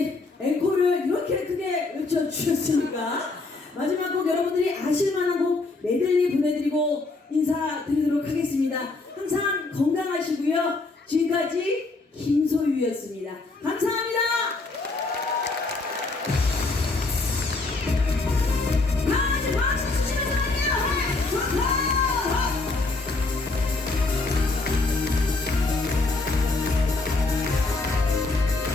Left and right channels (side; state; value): right; quieter; 3.5 dB